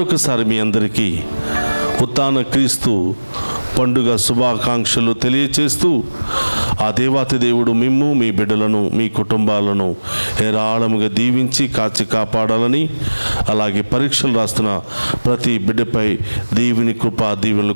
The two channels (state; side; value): inverted; both; correlation -1.00